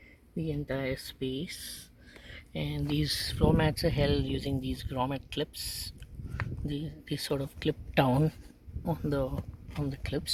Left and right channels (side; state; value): both; identical; correlation 1.00